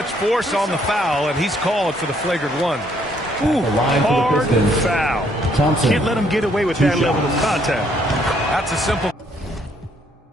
force on the foul, and he's called for the flagrant one. Ooh, hard foul. Thompson. Can't let him get away with that level of contact. That's a simple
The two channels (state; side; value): normal; both; correlation 0.68